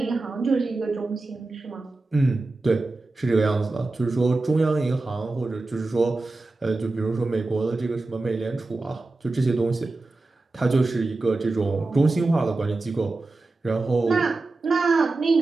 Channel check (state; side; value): quieter; left; 3.3 dB